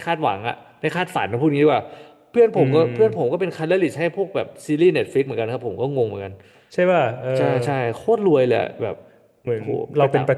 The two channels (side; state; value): both; identical; correlation 1.00